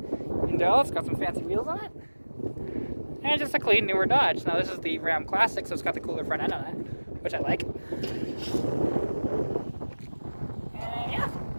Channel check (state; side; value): inverted; both; correlation -1.00